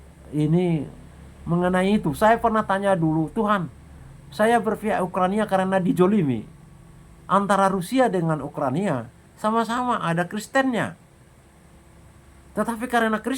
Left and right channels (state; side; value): identical; both; correlation 1.00